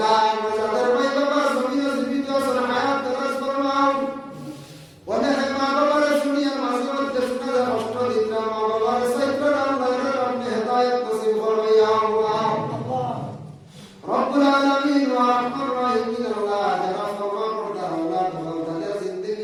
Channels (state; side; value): identical; both; correlation 1.00